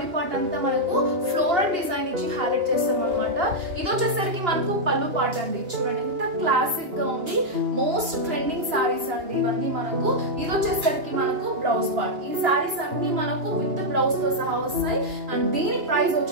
పార్ట్ అంతా మనకు ఫ్లోరల్ డిజైన్ ఇచ్చి హైలైట్ చేస్తాం అనమాట. ఇది వచ్చేసరికి మనకు పళ్ళు పార్ట్ అండి. చూడండి ఎంత క్లాసిక్ గా ఉంది. మోస్ట్ ట్రెండింగ్ సారీస్ అండి ఇవన్నీ మనకు. ఇది వచ్చేసరికి మనకు బ్లౌజ్ పార్ట్. ఈ సారీస్ అన్ని మనకు విత్ బ్లౌజ్ తో సహా వస్తాయి అండ్ దీని ప్రైస్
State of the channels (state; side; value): late; left; 2.9 ms